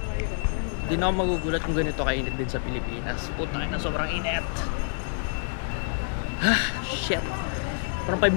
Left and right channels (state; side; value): silent; right; digital silence